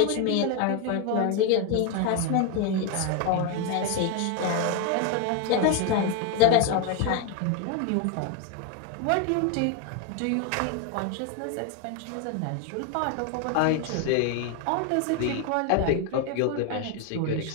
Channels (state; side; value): different; both; correlation 0.01